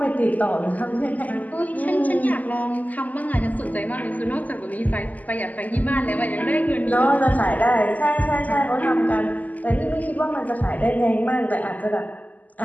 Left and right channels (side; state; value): right; late; 0.078 ms